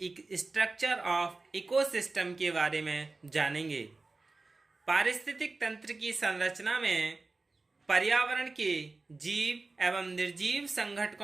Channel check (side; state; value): left; quieter; 3.6 dB